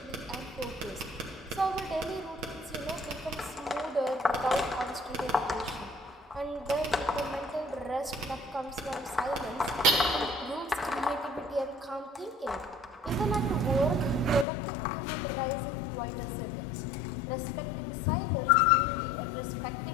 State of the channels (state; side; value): drops out; right; at 14.5 s